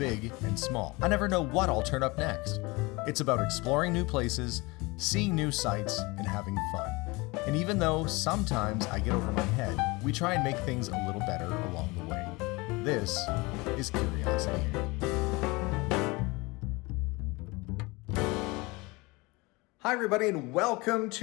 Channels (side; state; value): right; quieter; 24.5 dB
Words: and small. I never know what I'll turn up next. It's about exploring new places, seeing new sights, and having fun. And even though sometimes I get over my head, we try and make things a little better along the way. This is Curiosity. Hi everybody and welcome